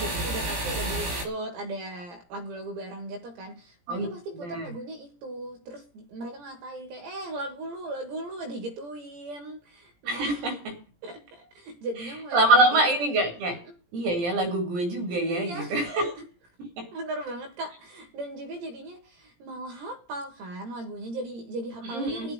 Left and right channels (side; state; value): left; late; 17 ms